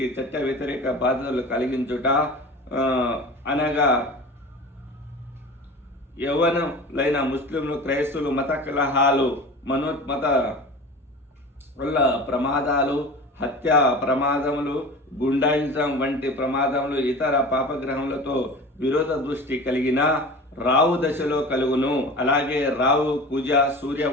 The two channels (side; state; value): both; normal; correlation 0.35